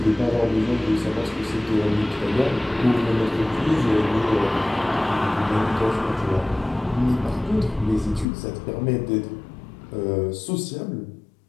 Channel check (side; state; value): right; drops out; at 8.2 s